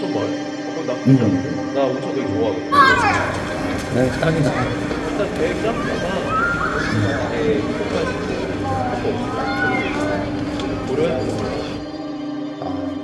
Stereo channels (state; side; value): identical; both; correlation 1.00